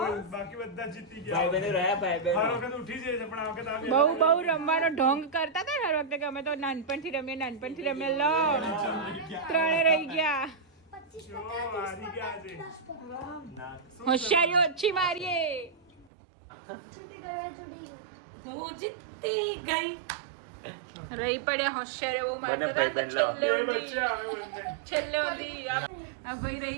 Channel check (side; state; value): left; drops out; at 16.1 s